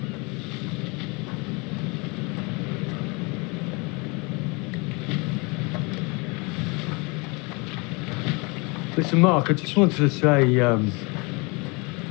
Listen, Mark, I just wanted to say,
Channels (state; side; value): quieter; right; 29.0 dB